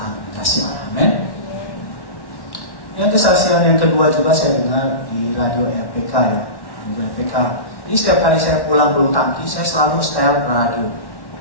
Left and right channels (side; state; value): right; late; 1.1 ms